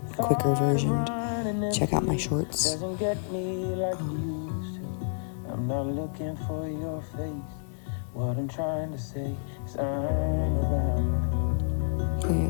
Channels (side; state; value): right; silent; 59 dB below the other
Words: quicker version, check out my shorts. I'm not looking for your face. What I'm trying to say is I'm around.